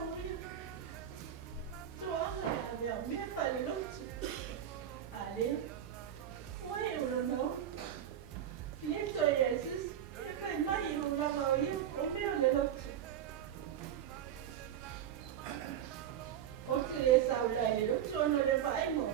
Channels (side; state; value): left; quieter; 10.0 dB